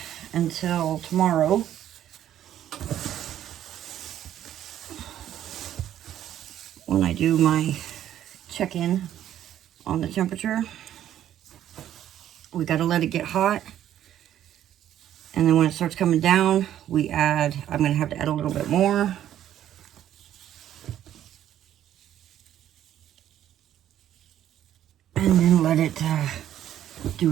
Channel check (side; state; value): left; quieter; 11.4 dB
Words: until tomorrow. When I do my check-in on the temperature, we got to let it get hot. And then when it starts coming down, we add, I'm going to have to add a little bit more. And then let it